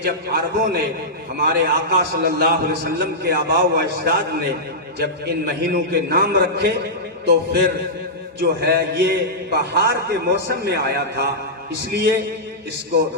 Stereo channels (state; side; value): normal; both; correlation -0.12